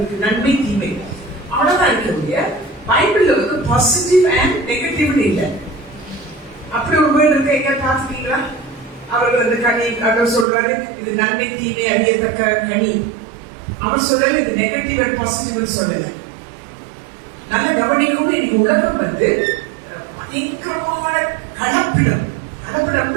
நன்மை தீமை அவ்வளவுதான் இருக்க. பைபிள்ல பாசிட்டிவ் அண்ட் நெகட்டிவ்னு இல்லை. அப்படி ஒரு வேர்டு இருக்கு, எங்க பாத்துட்டீங்களா? அவர்கள் அந்த கனி அவர் சொல்றாரு, இது நன்மை தீமை அறியத்தக்க கனி. அவர் சொல்லல இது நெகட்டிவ் அண்ட் பாசிட்டிவ் சொல்லல. நல்ல கவனிக்கும். இன்னைக்கு உலகம் பயங்கரமான கலப்பிடம்.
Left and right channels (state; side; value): drops out; left; at 10.5 s